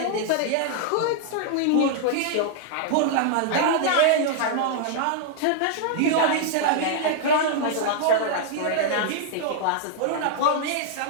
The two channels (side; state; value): both; different; correlation -0.01